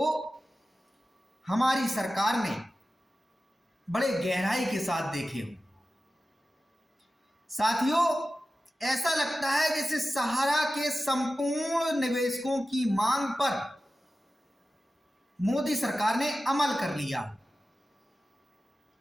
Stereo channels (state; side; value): normal; both; correlation 0.94